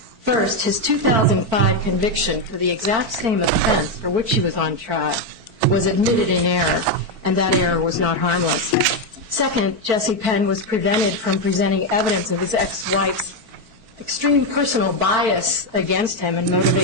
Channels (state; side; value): late; left; 4.5 ms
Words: his 2005 conviction for the exact same offense for which he was on trial was admitted in error, and that error was not harmless. Second, Jesse Penn was prevented from presenting evidence of his ex-wife's extreme personal bias against him and